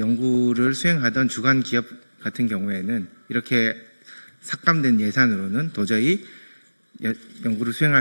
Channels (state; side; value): inverted; both; correlation -1.00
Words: 연구를 수행하던 주간 기업 같은 경우에는 이렇게 삭감된 예산으로는 도저히 연구를